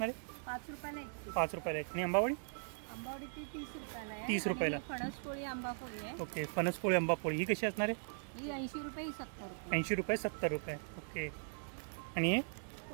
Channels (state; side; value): silent; left; digital silence